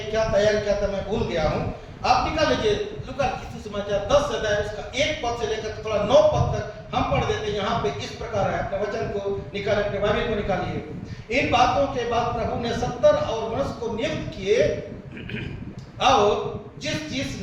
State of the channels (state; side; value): identical; both; correlation 1.00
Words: क्या तैयार किया था मैं भूल गया हूँ। आप निकाल लीजिए लूका के सुसमाचार 10 अध्याय, उसका 1 पद से लेकर थोड़ा 9 पद तक हम पढ़ देते हैं। यहाँ पे इस प्रकार है, अपने वचन को निकाल, अपने बाइबल को निकालिए। इन बातों के बाद प्रभु ने 70 और मनुष्य को नियुक्त किए, और जिस